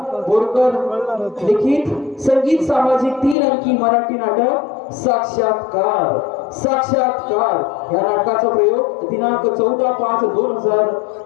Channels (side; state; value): right; drops out; at 3.4 s